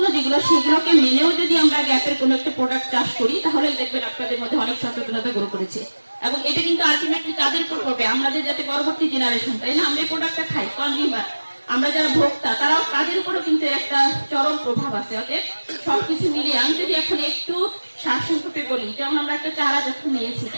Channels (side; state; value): both; inverted; correlation -1.00